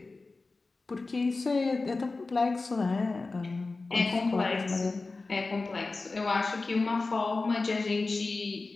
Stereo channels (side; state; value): right; quieter; 3.6 dB